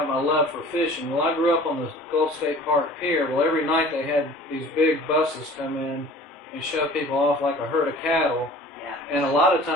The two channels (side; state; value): both; normal; correlation 0.45